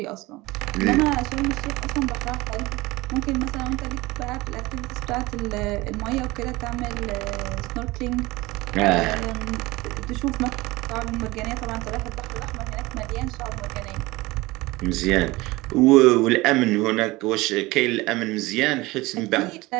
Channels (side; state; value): left; quieter; 21.0 dB